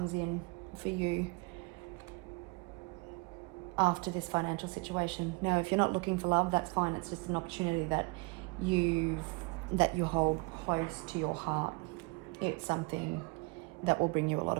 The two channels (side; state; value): left; quieter; 27.8 dB